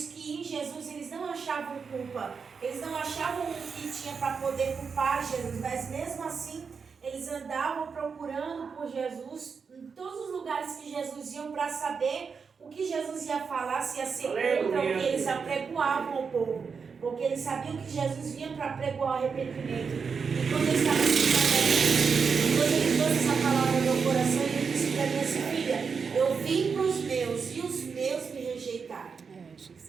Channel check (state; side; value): quieter; left; 5.7 dB